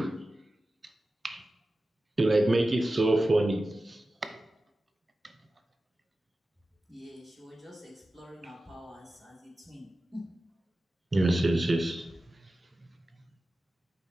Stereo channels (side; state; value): both; normal; correlation 0.94